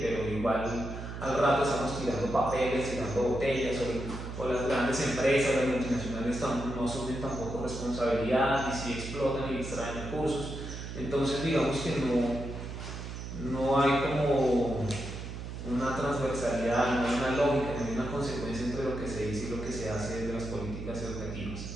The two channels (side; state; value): right; noise; hum, 8 dB below the sound